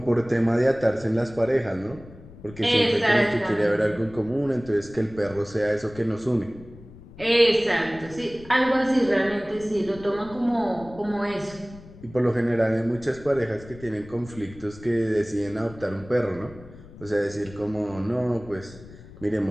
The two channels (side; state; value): left; noise; rumble, 19 dB below the sound